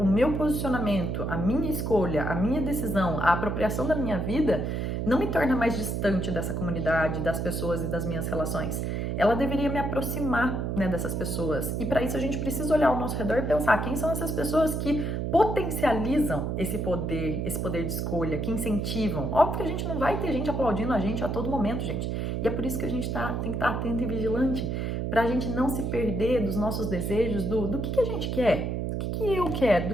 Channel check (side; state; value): right; noise; hum, 1 dB below the sound